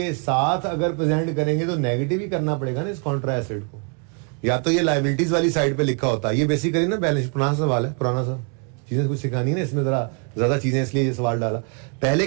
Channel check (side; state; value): left; quieter; 38.3 dB